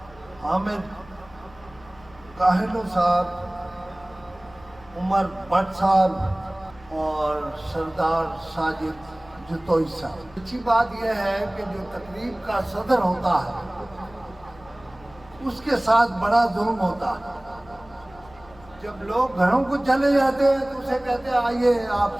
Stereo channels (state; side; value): noise; left; hum, 24 dB below the sound